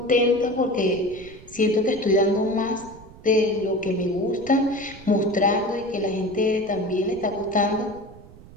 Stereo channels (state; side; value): noise; right; rumble, 20 dB below the sound